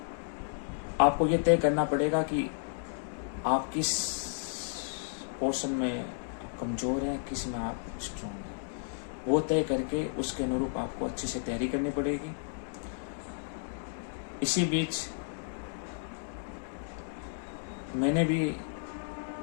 आपको ये तय करना पड़ेगा कि आप किस पोर्शन में कमज़ोर हैं, किस में आप स्ट्रॉन्ग हैं, वो तय करके उसके अनुरूप आपको अच्छे से तैयारी करनी पड़ेगी। इसी बीच मैंने भी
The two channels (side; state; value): right; silent; digital silence